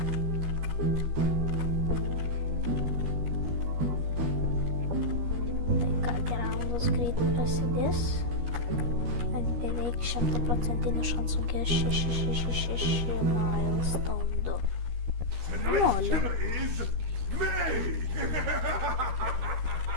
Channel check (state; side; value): late; left; 13 ms